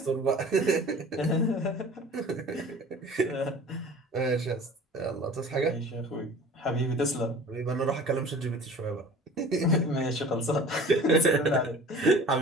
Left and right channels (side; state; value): both; normal; correlation 0.43